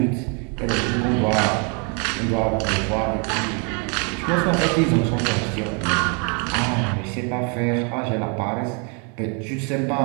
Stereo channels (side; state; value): left; quieter; 35.9 dB